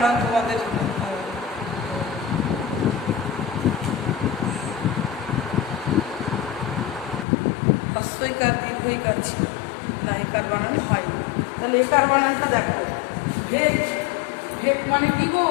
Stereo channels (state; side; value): drops out; right; at 7.2 s